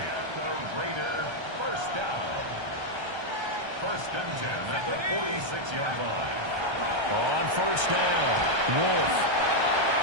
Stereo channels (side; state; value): left; late; 1.3 ms